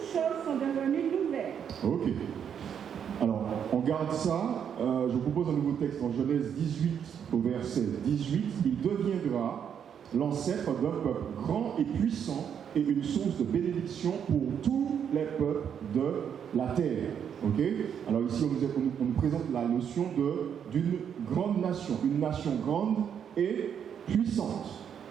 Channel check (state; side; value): quieter; left; 8.2 dB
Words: choses sont devenues nouvelles. Ok. Alors, on garde ça. Je vous propose un nouveau texte en Genèse 18, au verset 18. Il deviendra l'ancêtre d'un peuple grand et puissant et une source de bénédiction pour tous les peuples de la terre. Ok? Alors ici, on nous présente la notion d'une grande nation, une nation grande et puissante.